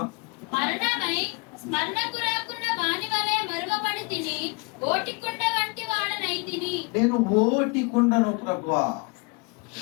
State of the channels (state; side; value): quieter; right; 30.0 dB